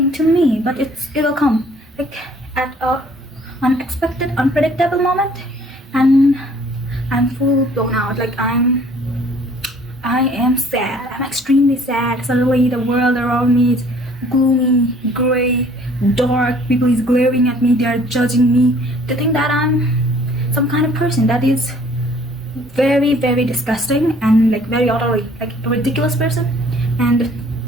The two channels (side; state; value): both; normal; correlation 0.56